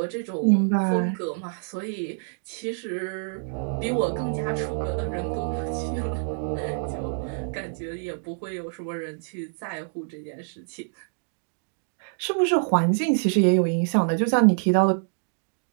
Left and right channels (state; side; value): silent; left; digital silence